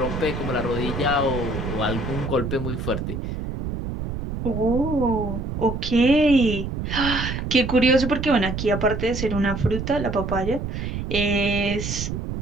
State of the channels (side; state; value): right; noise; rumble, 5 dB below the sound